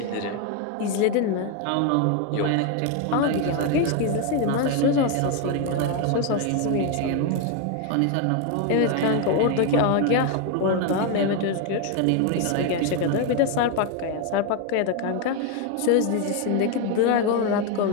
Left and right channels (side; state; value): both; different; correlation 0.01